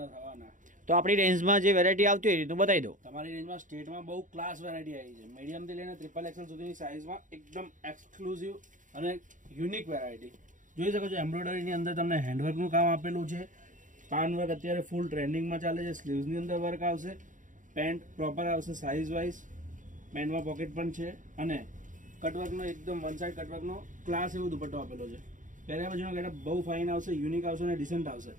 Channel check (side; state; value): left; late; 0.37 ms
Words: થવાના. તો આપણી રેન્જમાં જે વેરાયટી આવતી હોય એ રીતનું બતાવી દો. તમારી રેન્જમાં સ્ટેટમાં બહુ ક્લાસ વેરાયટી આવી છે. મીડિયમ થી લઈને ટ્રિપલ એક્સેલ સુધીની સાઇઝમાં એકદમ એક્સક્લુઝિવ અને યુનિક વેરાયટી જોઈ શકો છો. એમ્બ્રોઇડરીની અંદર તમને હેન્ડવર્કનું કામ આપેલું છે. પાન વર્ક અત્યારે ફૂલ ટ્રેન્ડિંગમાં ચાલે છે. સ્લીવ્સની અંદર વર્ક આવશે. પેન્ટ પ્રોપર આવશે સાઇઝ વાઇઝ. પેન્ટમાં પોકેટ પણ છે અને કટવર્કનો એકદમ વન સાઇડ કટવર્કનો ક્લાસ એવો દુપટ્ટો આપેલો છે. પહેર્યા પછીનો ગેટઅપ બહુ ફાઇન આવશે, યુનિક આવશે અને ડિસન્ટ આવશે.